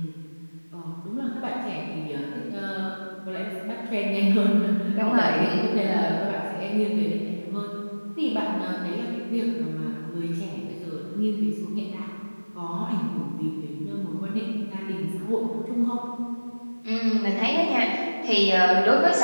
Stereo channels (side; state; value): both; inverted; correlation -1.00